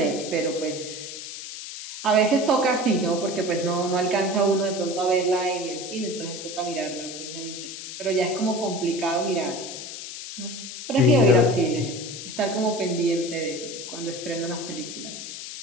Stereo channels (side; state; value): left; noise; hiss, 9 dB below the sound